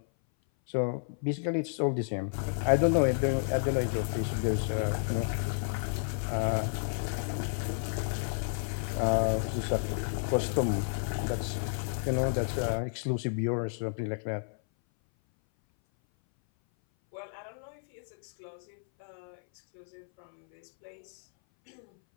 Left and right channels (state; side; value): silent; right; 57 dB below the other